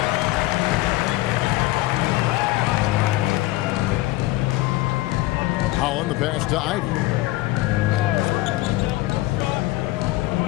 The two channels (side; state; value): right; quieter; 18.2 dB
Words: Holland the pass to Ivy.